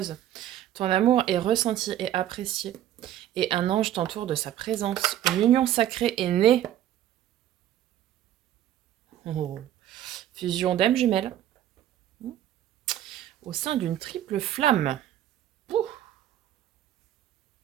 Ton amour est ressenti et apprécié. Et un ange t'entoure de sa présence. Une union sacrée est née. Oh. Fusion d'âmes jumelles. Au sein d'une triple flamme. Ouh.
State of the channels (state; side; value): quieter; left; 11.9 dB